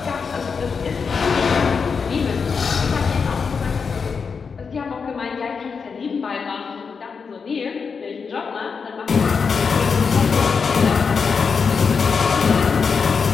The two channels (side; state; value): right; quieter; 5.6 dB